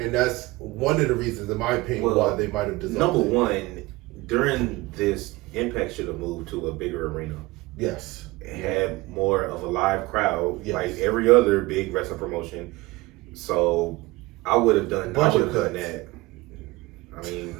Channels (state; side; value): quieter; left; 21.2 dB